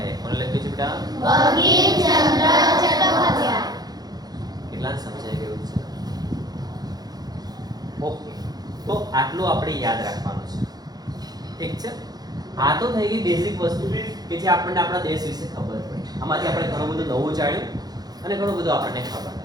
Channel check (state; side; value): late; left; 0.19 ms